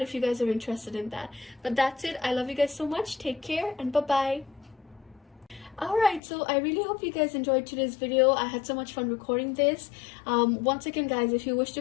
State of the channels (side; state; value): right; drops out; at 6.2 s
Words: if you guys are interested in that. But that's it. I love you guys so much. Take care and bye-bye. Alright, so I really hope you guys enjoyed today's video. I had so much fun recording this. Once again, guys, if you wish to